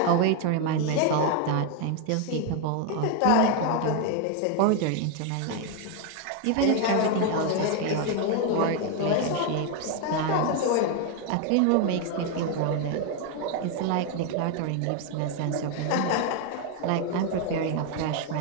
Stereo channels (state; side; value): different; both; correlation 0.01